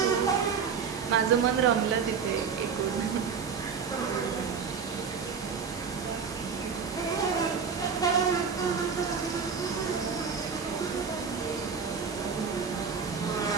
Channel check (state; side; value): quieter; left; 6.1 dB